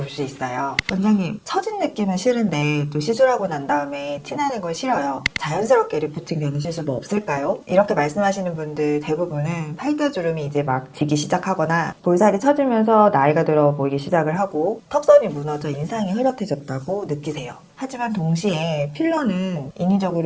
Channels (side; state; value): both; identical; correlation 1.00